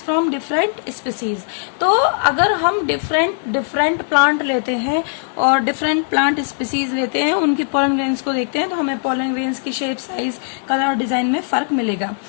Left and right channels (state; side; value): silent; right; 62 dB below the other